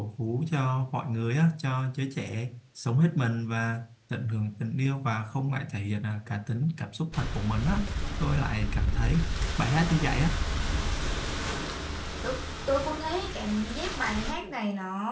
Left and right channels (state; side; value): identical; both; correlation 1.00